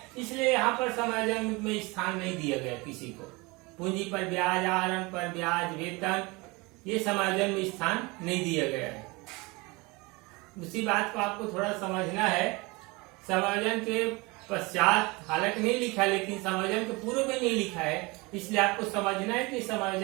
इसलिए यहाँ पर समायोजन में स्थान नहीं दिया गया किसी को। पूंजी पर ब्याज, आहरण पर ब्याज, वेतन, ये समायोजन में स्थान नहीं दिया गया है। उसी बात को आपको थोड़ा समझना है। समायोजन के पश्चात हालांकि नहीं लिखा, लेकिन समायोजन के पूर्व में नहीं लिखा है, इसलिए आपको समझना है कि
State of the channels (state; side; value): quieter; left; 25.3 dB